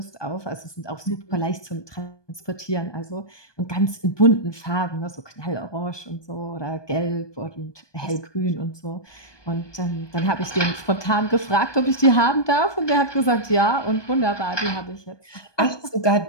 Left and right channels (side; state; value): right; late; 1.2 ms